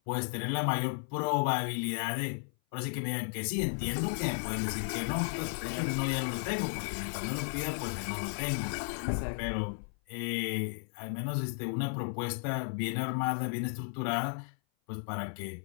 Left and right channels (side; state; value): right; silent; 55 dB below the other